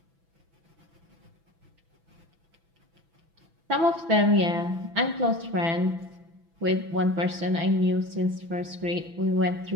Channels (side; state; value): left; late; 6.0 ms